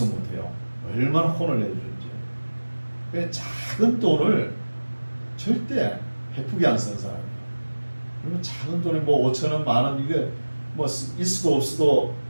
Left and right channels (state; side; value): inverted; both; correlation -1.00